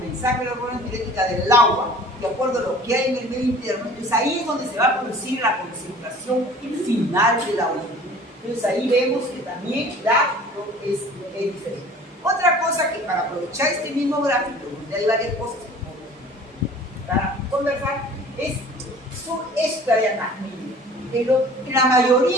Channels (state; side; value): normal; both; correlation 0.47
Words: de la hormona antidiurética del agua, de acuerdo a lo que hay en el medio interno. Entonces ahí es donde se va a producir la concentración final de la orina. Entonces ahí vemos que también es diferente. Otra cosa que para aprovechar este mismo gráfico, donde hay varias cosas para conversar, son esta dianámica. En la